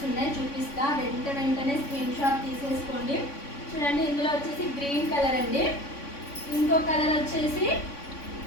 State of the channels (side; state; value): right; late; 3.5 ms